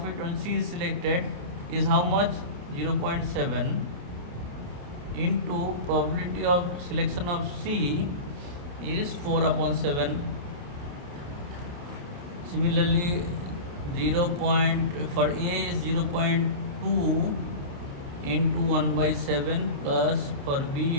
when C is selected is how much? 0.7 into probability of selection of C is 4 upon 7. Similarly, for A is 0.2 into 1 by 7, plus for B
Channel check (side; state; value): left; late; 29 ms